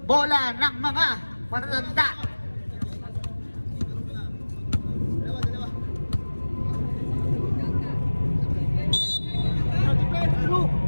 Bola ng mga matatanda.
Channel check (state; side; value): inverted; both; correlation -1.00